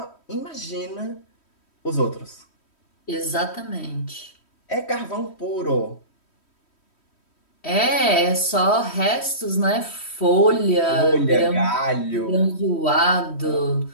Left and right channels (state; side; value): late; right; 3.1 ms